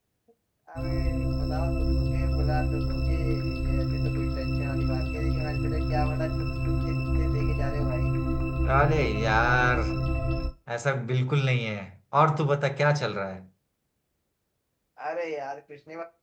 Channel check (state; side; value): identical; both; correlation 1.00